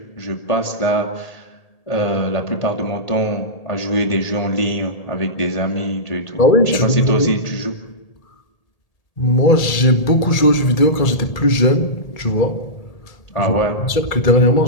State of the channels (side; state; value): right; late; 1.8 ms